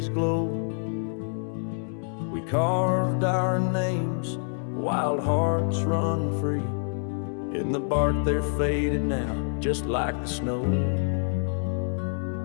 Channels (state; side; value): silent; right; 60 dB below the other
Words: glow, we carved our names, wild hearts run free. In the bark they're faded now, just like the snow.